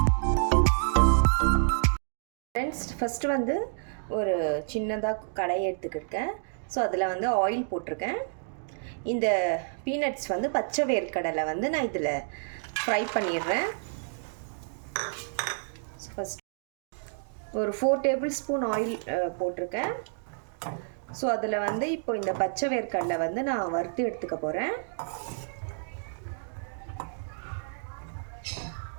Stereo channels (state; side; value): silent; left; digital silence